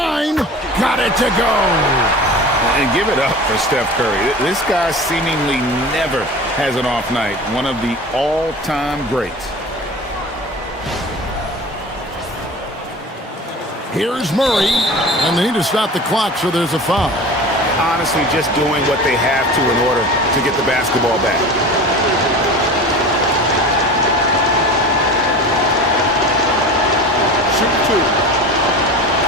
Got it to go. And give it up for Steph Curry. This guy seemingly never has an off night. One of the all-time greats. Here's Murray. And they need to stop the clock, so there's a foul. Honestly, just doing what they have to in order to get the basketball back. Shoot 2.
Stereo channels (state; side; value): normal; both; correlation 0.36